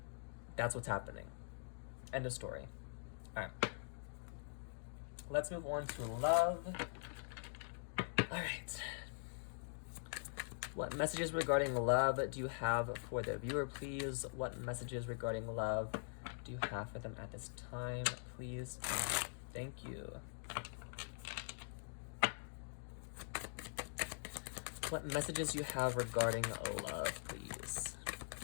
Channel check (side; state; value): right; silent; digital silence